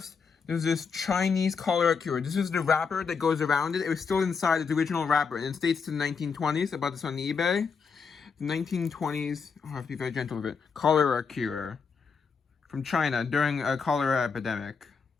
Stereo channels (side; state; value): right; quieter; 5.6 dB